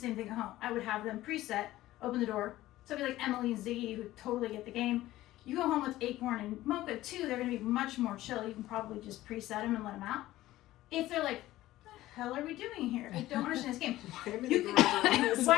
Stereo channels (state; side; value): quieter; right; 15.8 dB